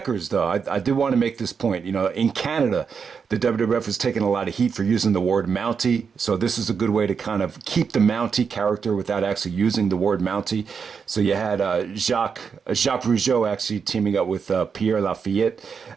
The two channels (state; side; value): quieter; left; 6.1 dB